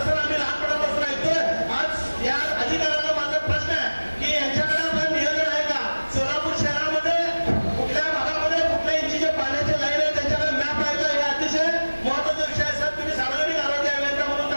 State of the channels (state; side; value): inverted; both; correlation -1.00